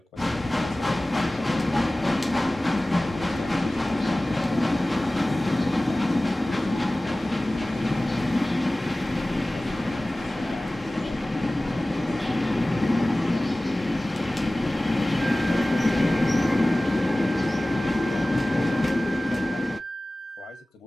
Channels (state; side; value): normal; both; correlation 0.98